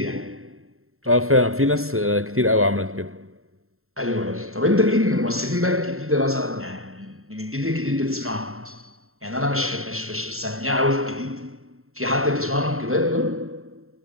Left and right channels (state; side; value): late; left; 0.62 ms